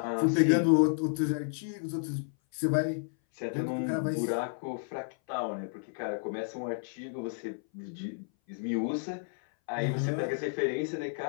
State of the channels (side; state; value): right; silent; 57 dB below the other